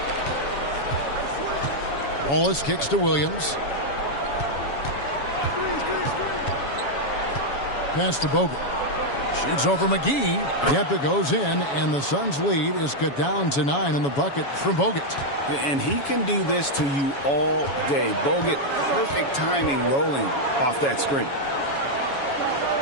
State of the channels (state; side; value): late; right; 7.2 ms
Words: Wallace kicks to Williams. Pass to Bogut. Shoots over McGee. Yep, it goes in, and the Suns' lead is cut down to 9 in the bucket from Bogut. And he can do this to you all day. Bogut, perfect timing rolling off that screen.